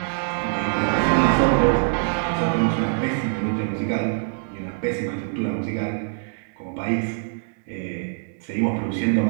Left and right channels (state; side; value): silent; left; digital silence